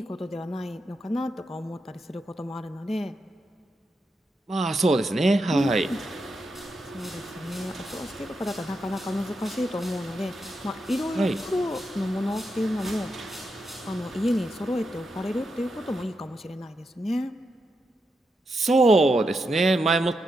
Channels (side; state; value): both; normal; correlation 0.85